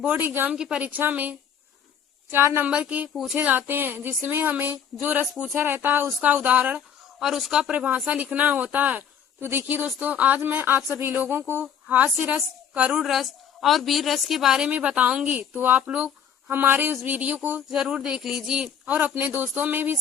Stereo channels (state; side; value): quieter; right; 8.0 dB